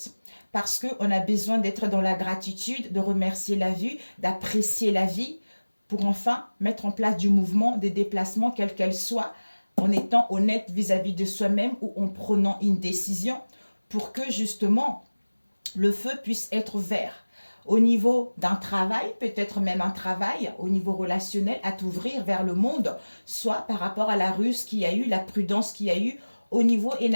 Parce qu'on a besoin d'être dans la gratitude, de remercier la vie, d'apprécier la vie, pour enfin mettre en place du mouvement, des déplacements, quels qu'elles soient, en étant honnête vis-à-vis de soi-même ou en prenant une décision pour que justement le feu puisse être vert. Au niveau d'un travail, peut-être même un travail, au niveau relationnel, à t'ouvrir vers le monde, soit par rapport à la ruse qu'il y a eu, la prudence qu'il y a eu, au niveau,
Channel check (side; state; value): both; inverted; correlation -1.00